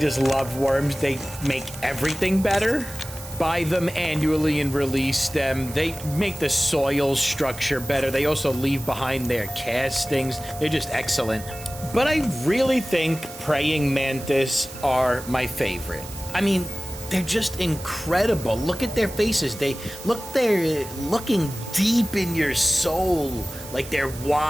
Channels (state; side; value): noise; right; hiss, 15 dB below the sound